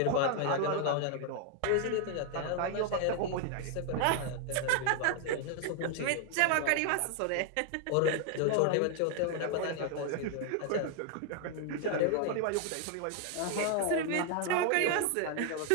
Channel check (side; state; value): both; different; correlation 0.00